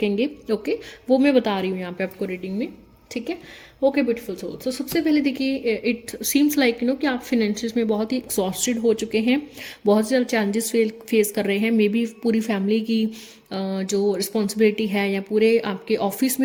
ओके, वो मैं बता रही हूँ यहाँ पे आपको रीडिंग में, ठीक है। Okay beautiful soul. तो सबसे पहले देखिए, इट सीम्स लाइक कि आप फिनेंशियस में बहुत ही एग्जॉस्टेड हो चुके हैं, बहुत ज़्यादा चैलेंजेस फेस कर रहे हैं। मे बी पूरी फैमिली की जो रिस्पॉन्सिबिलिटी है या पूरे आपके ऑफिस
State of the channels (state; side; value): identical; both; correlation 1.00